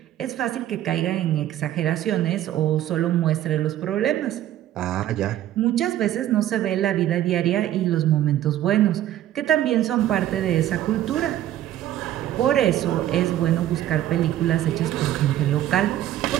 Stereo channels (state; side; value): quieter; left; 12.6 dB